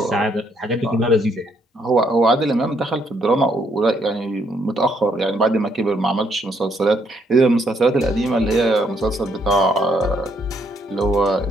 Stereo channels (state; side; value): normal; both; correlation 0.71